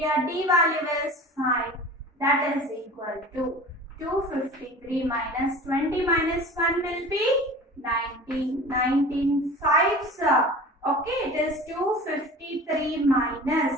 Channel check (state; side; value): normal; both; correlation 0.39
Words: D value is 5. That is equal to 253 minus 20 minus 1 will be 19. 19 5s. Okay, it is 253